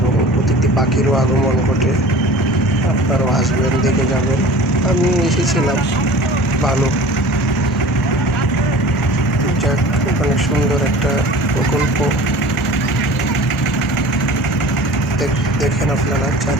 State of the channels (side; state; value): both; normal; correlation 0.41